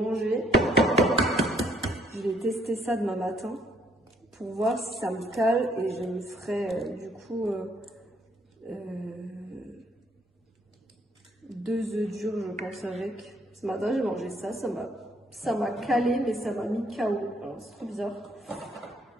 Je vais tester ça demain matin pour voir si ça me cale et je me ferai du coup 2 œufs durs, je pense, avec. Ce matin, j'ai mangé ça, ça m'a calé, mais ça m'a mis KO. Alors, c'est trop bizarre.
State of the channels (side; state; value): both; normal; correlation 0.68